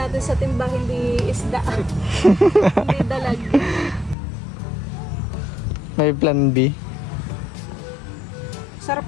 sa timba, hindi isda. Hindi dalag. May plan B. Sarap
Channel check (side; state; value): right; drops out; at 4.2 s